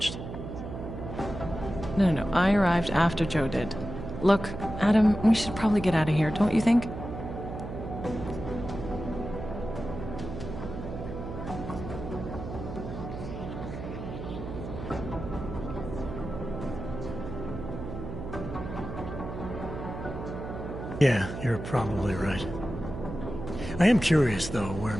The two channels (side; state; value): right; noise; hum, 8 dB below the sound